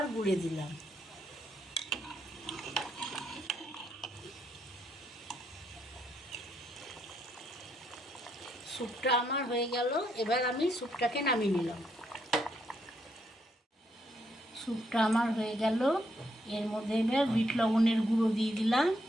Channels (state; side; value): normal; both; correlation 0.76